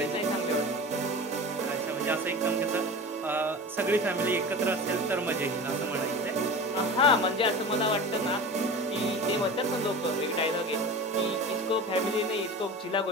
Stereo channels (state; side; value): normal; both; correlation 0.33